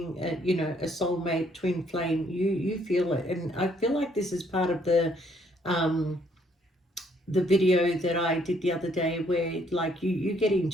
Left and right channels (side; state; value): both; normal; correlation 0.67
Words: you know, a soulmate, twin flame, you feel it. And I feel like this is part of the video that I did the other day, where like you get